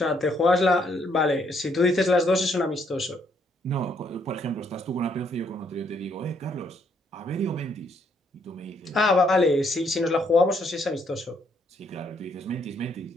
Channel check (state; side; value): normal; both; correlation 0.70